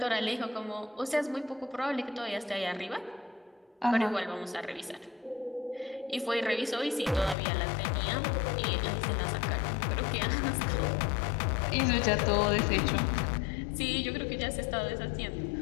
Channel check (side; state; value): right; drops out; at 7.4 s